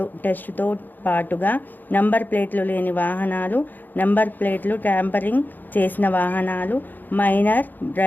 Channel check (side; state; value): right; late; 0.087 ms